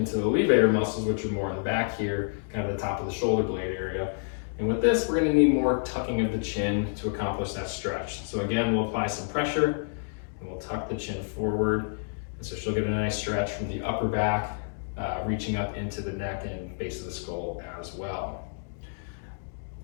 the levator muscles, which are more in the back here, kind of the top of the shoulder blade area. And with this, we're gonna need more tucking of the chin to accomplish that stretch. So again, we'll apply some pressure and we'll tuck the chin forward. And so she'll get a nice stretch from the upper back, reaching up into the neck and base of the skull as well.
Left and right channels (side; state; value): right; silent; digital silence